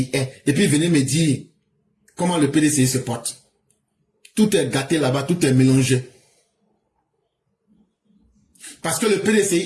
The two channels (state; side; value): identical; both; correlation 1.00